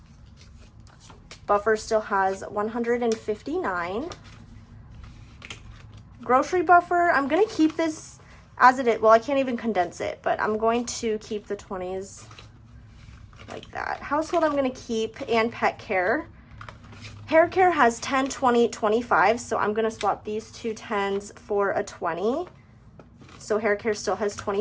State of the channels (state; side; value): identical; both; correlation 1.00